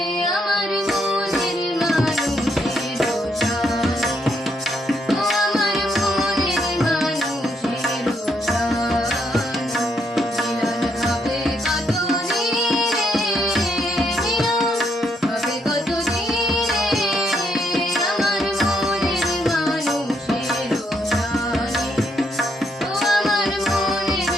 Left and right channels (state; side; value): normal; both; correlation 0.75